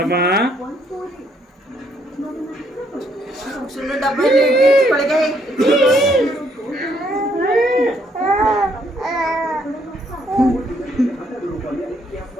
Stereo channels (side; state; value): both; normal; correlation 0.70